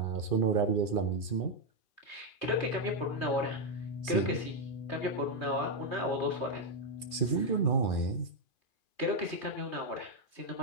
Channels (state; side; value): late; right; 2.4 ms